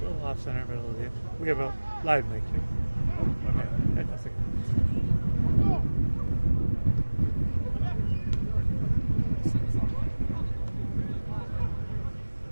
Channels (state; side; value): inverted; both; correlation -1.00